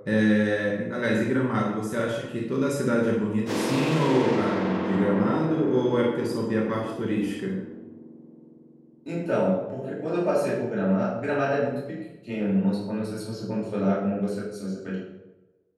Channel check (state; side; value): identical; both; correlation 1.00